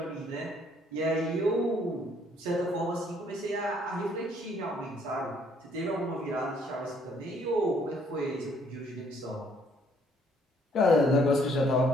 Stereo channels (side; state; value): both; normal; correlation 0.65